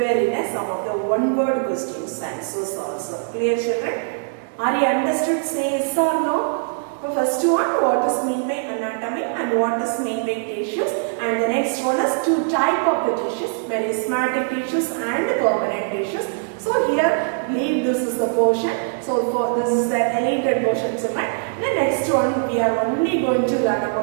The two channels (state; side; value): silent; left; digital silence